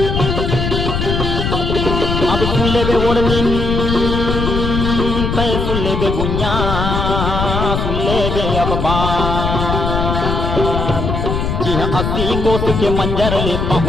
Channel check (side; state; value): left; noise; rumble, 1 dB below the sound